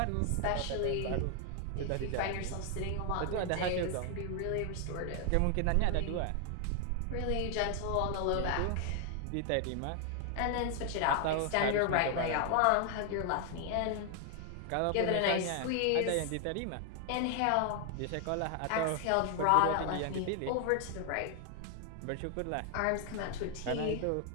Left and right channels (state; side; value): different; both; correlation 0.00